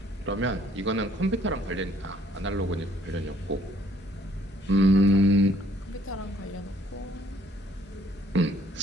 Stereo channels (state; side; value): normal; both; correlation 0.63